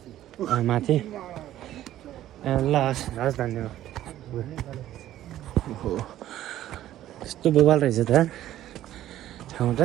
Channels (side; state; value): left; quieter; 13.1 dB